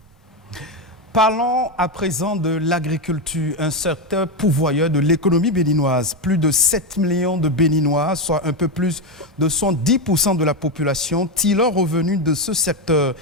Parlons à présent de l'agriculture, un secteur pourvoyeur de l'économie béninoise. Plus de 7 millions de Béninois, soit un peu plus de 110% de la population, tirent leur revenu de ce secteur.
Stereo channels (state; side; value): normal; both; correlation 0.09